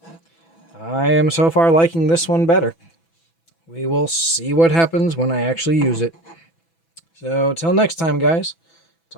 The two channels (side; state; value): right; late; 6.0 ms